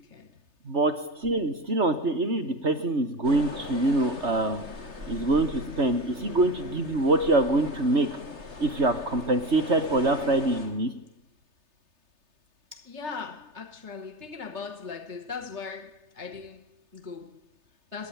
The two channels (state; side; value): late; left; 3.3 ms